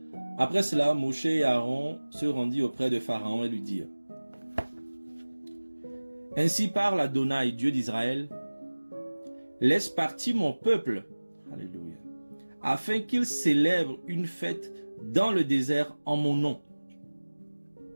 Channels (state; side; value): inverted; both; correlation -1.00